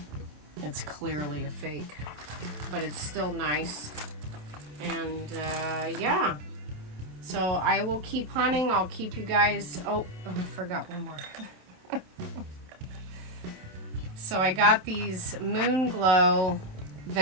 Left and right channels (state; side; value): late; left; 27 ms